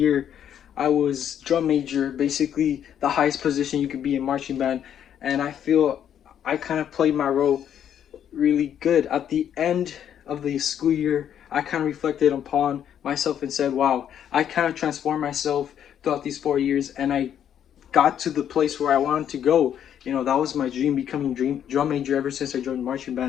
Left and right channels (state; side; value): quieter; right; 9.5 dB